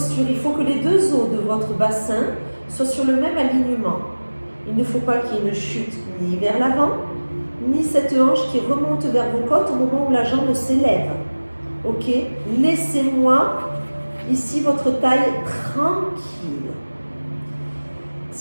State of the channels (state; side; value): inverted; both; correlation -1.00